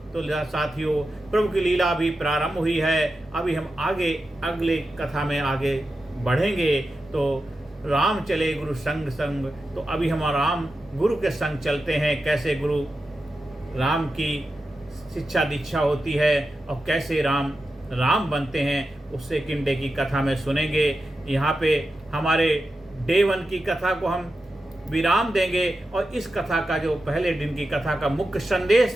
तो साथियों, प्रभु की लीला भी प्रारंभ हुई है। अभी हम आगे अगले कथा में आगे बढ़ेंगे। तो राम चले गुरु संग संग, तो अभी हम राम गुरु के संग चलते हैं। कैसे गुरु राम की शिक्षा दीक्षा होती है और कैसे राम राम बनते हैं, उससे किन डे की कथा में सुनेंगे। यहाँ पे हमारे डे 1 की कथा को हम विराम देंगे। और इस कथा का जो पहले दिन की कथा का मुख्य संदेश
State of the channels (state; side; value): normal; both; correlation 0.91